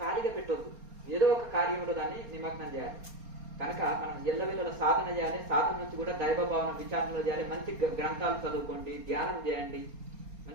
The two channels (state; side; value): late; left; 4.3 ms